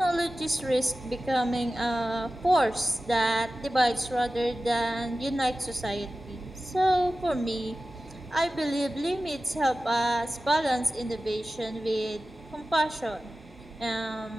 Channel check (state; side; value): normal; both; correlation 0.95